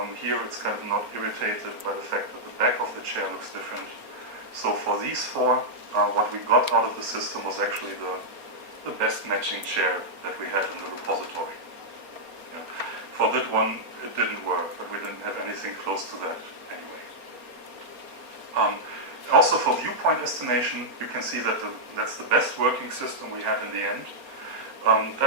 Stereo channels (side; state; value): left; late; 4.3 ms